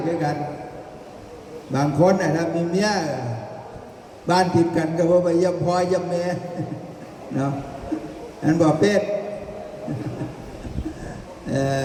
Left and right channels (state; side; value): identical; both; correlation 1.00